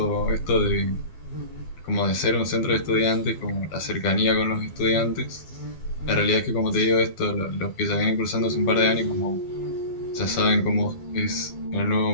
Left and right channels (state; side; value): late; right; 12 ms